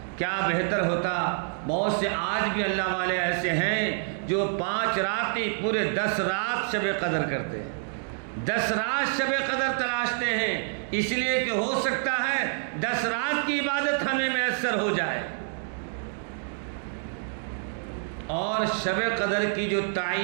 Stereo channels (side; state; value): left; silent; 60 dB below the other